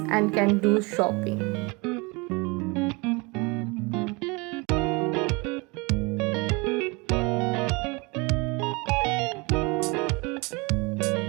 and can do shopping.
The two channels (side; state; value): left; quieter; 27.5 dB